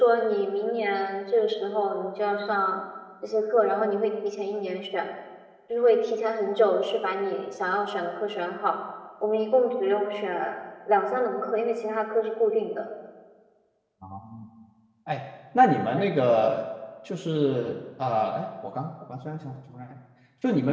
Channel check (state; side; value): identical; both; correlation 1.00